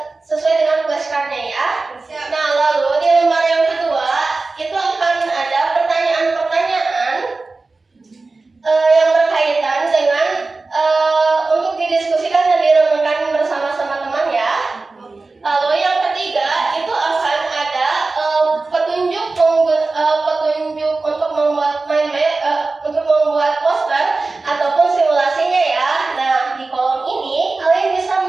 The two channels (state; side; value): quieter; left; 3.6 dB